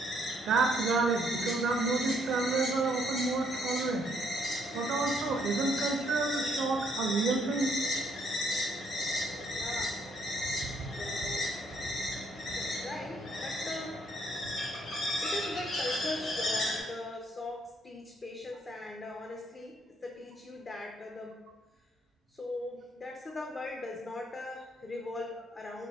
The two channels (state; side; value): normal; both; correlation 0.69